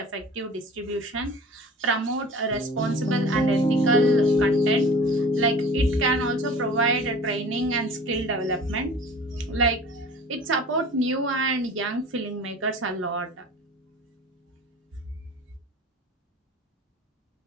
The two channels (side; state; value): both; normal; correlation 0.42